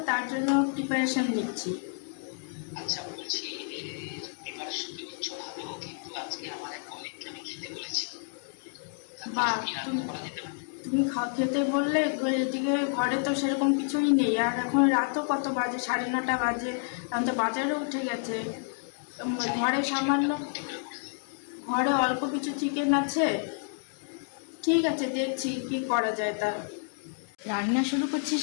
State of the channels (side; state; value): right; silent; digital silence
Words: তার জন্য প্রিপারেশন নিচ্ছি। আচ্ছা, বলছি প্রিপারেশন তো নিচ্ছ ভালো, কিন্তু আজকে আমার এক কলিগকে আমি খেতে বলেছি। তার বা কিছু কি রান্না তুমি করা যেতে পারে? তুমি খেতে বললে, এদিকে ঘরে তো সেরকম কিছুই নেই, আর এখন রাতও কত বাজে, 9:30 বাজে, এখন তো বাজারে উঠে গেছে। যাই হোক, ঘরে কিছু একটা সামান্য, বুদ্ধি করে বলে দাও। ঘরে অল্প কিছু চিকেন আছে। ঠিক আছে, দেখছি কি করা যায় তা। রান্না শুরু করছি